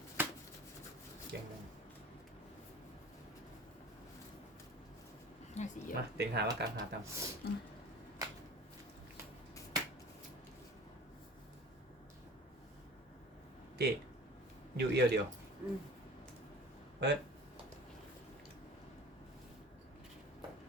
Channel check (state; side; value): normal; both; correlation 0.41